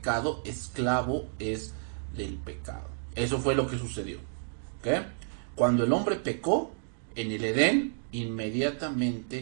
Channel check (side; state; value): left; silent; digital silence